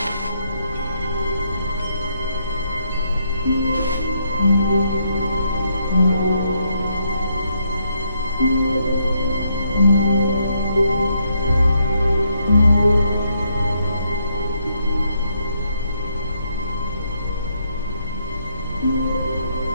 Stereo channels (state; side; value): inverted; both; correlation -0.75